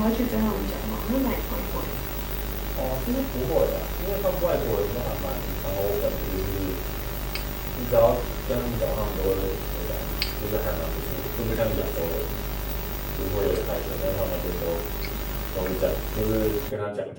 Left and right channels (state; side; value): identical; both; correlation 1.00